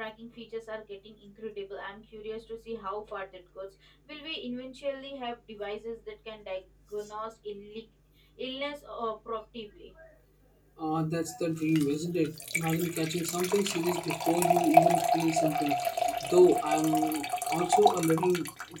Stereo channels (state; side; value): identical; both; correlation 1.00